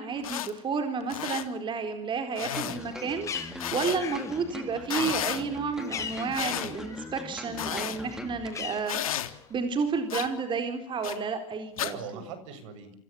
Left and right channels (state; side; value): normal; both; correlation 0.31